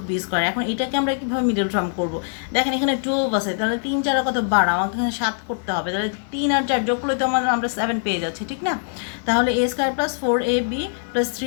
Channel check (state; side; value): silent; right; digital silence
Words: square. এখন এটাকে আমরা কীভাবে মিডল টার্ম করবো? দেখেন এখানে 12 আছে, তাহলে 3 4 কত 12, আমাকে এখানে 7 করতে হবে, তাহলে 3 আর 4 যোগ করলে তো আমরা 7 পেয়ে যাচ্ছি, ঠিক না। তাহলে a square plus 4ab plus